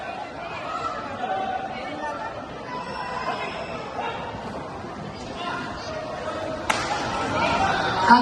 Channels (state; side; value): identical; both; correlation 1.00